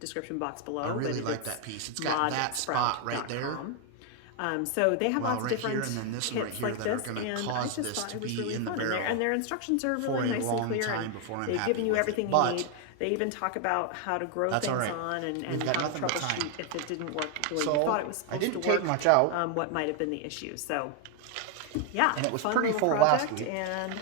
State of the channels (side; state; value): both; different; correlation 0.01